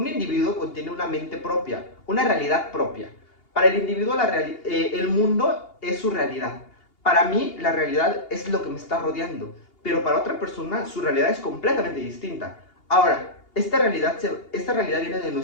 individuo contiene una mente propia, una realidad propia. Para el individuo el mundo es su realidad. Para mí la realidad es lo que me está rodeando. pero para otra persona su realidad es completamente distinta. Ahora, esta realidad viene de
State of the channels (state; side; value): late; right; 2.8 ms